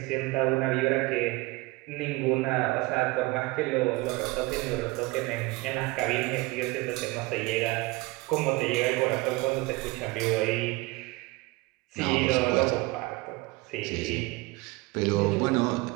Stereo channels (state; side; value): quieter; left; 22.5 dB